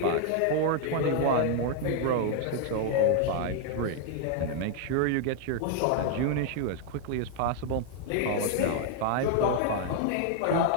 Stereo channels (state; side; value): different; both; correlation 0.00